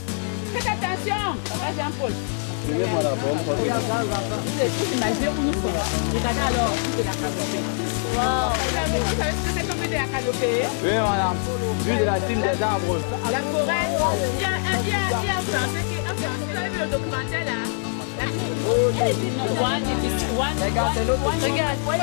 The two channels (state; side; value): silent; right; digital silence